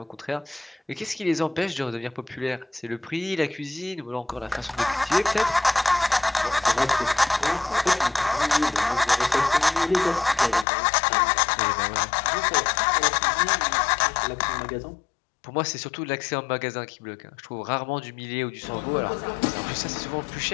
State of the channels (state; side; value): drops out; right; at 10.7 s